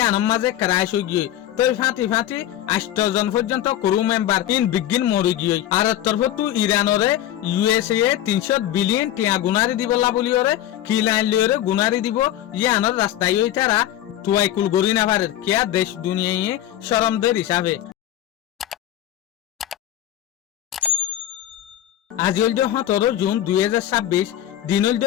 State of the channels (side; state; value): right; quieter; 12.5 dB